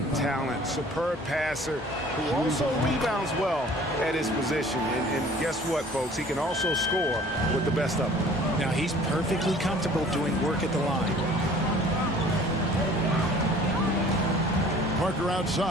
talent, superb passer who also rebounds well at his position. And guess what, folks? He can also score with the best of them. Now, he's perfectly comfortable doing work at the line. Parker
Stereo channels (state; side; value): normal; both; correlation 0.50